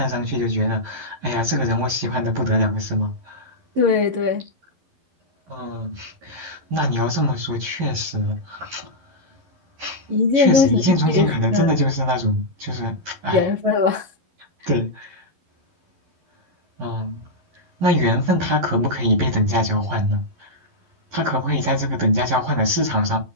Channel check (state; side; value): late; left; 11 ms